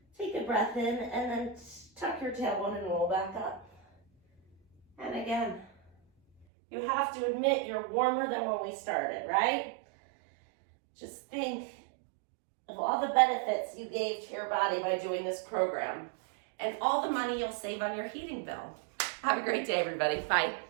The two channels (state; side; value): drops out; left; at 6.5 s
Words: Take a breath in and then tuck your tailbone and roll back up. And again, you have to admit you're warmer than when we started, right? Just think of all the benefits you gave to your body by doing this program and all the money you'll save on your heating bill. Have a great day, everybody. Bye.